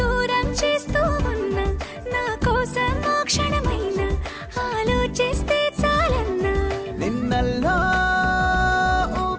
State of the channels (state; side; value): identical; both; correlation 1.00